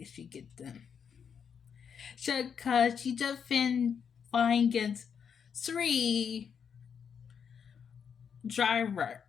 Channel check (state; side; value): quieter; right; 7.1 dB